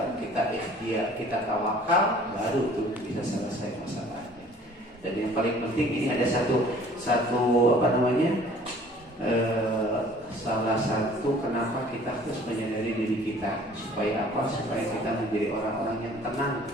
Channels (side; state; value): both; normal; correlation 0.52